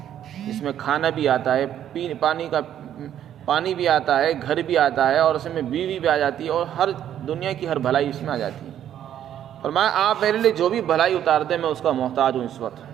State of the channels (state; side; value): quieter; left; 10.5 dB